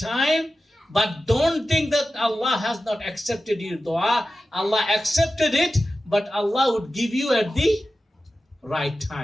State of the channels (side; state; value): both; normal; correlation 0.93